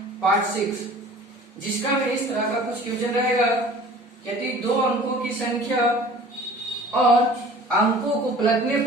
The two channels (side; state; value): both; normal; correlation 0.46